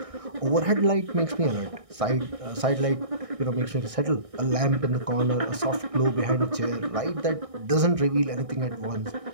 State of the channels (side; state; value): left; late; 1.6 ms